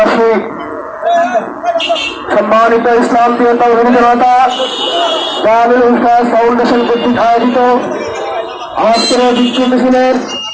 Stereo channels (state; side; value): identical; both; correlation 1.00